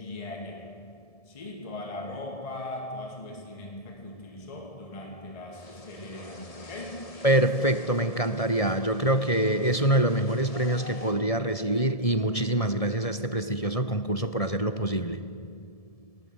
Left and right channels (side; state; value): right; late; 1.6 ms